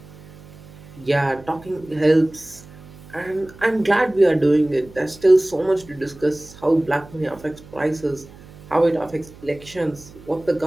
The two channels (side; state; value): right; noise; hum, 21 dB below the sound